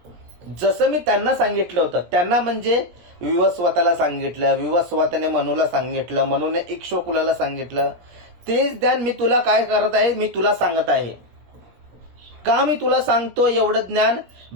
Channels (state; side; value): late; left; 17 ms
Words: जसं मी त्यांना सांगितलं होतं, त्यांना म्हणजे विवस्वताला सांगितलं, विवस्वताने मनूला सांगितलं, मनूने इक्ष्वाकुला सांगितलं, तेच ज्ञान मी तुला काय करत आहे, मी तुला सांगत आहे. का मी तुला सांगतो एवढं ज्ञान?